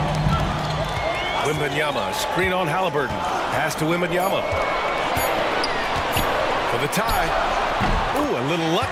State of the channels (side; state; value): both; identical; correlation 1.00